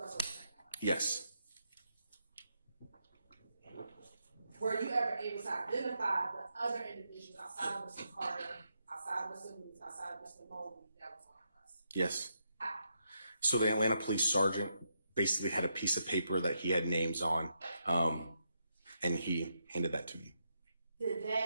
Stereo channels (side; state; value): both; inverted; correlation -0.80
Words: or the second bus? Yes. Were you ever able to identify the other individuals outside of Mr. Carter, outside of Mr. Lewis, outside of Mr. Mobley that was on the bus? Yes. How? So the Atlanta police sergeant basically had a piece of paper that he had names on, and he handed that to me. Did